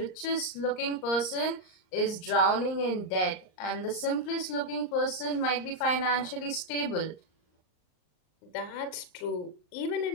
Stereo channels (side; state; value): right; late; 38 ms